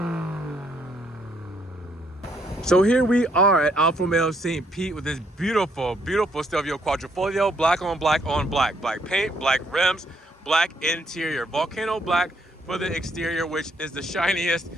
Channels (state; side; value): normal; both; correlation 0.71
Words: So here we are at Alfa Romeo St. Pete with this beautiful, beautiful Stelvio Quadrifoglio, black on black on black. Black paint, black rims, black interior. Vulcano black for the exterior, which is the shiniest,